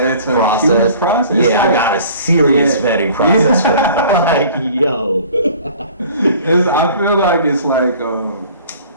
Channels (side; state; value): both; inverted; correlation -0.48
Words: a process. It's I got a serious vetting process for that. Like, yo. I feel like it's like,